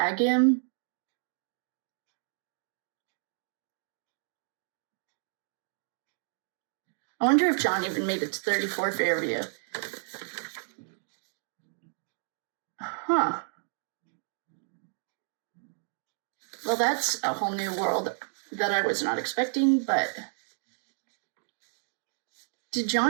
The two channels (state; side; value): silent; left; digital silence